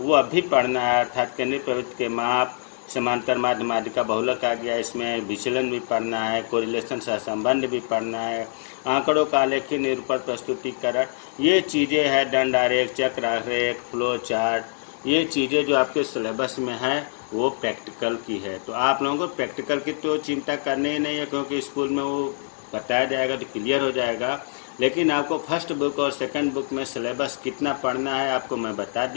अभी पढ़ना है, अर्थात केंद्रीय प्रवृत्ति के माप, समांतर माध्य, माध्यिका बहुलक आ गया, इसमें विचलन भी पढ़ना है, कोरिलेशन सहसंबंध भी पढ़ना है, आंकड़ों का आलेखी निरूपण प्रस्तुतिकरण, ये चीज़ें हैं, दंड आरेख, चक्र आरेख, फ्लो चार्ट, ये चीज़ें जो आपके सिलेबस में है वो प्रैक्टिकल की है। तो आप लोगों को प्रैक्टिकल की तो चिंता करनी ही नहीं है, क्योंकि स्कूल में वो बताया जाएगा तो क्लियर हो जाएगा। लेकिन आपको फर्स्ट बुक और सेकंड बुक में सिलेबस कितना पढ़ना है आपको मैं बता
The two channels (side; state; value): right; silent; digital silence